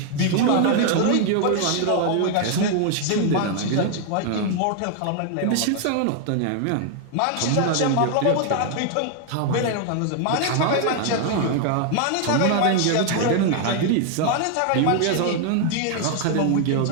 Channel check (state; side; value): different; both; correlation 0.00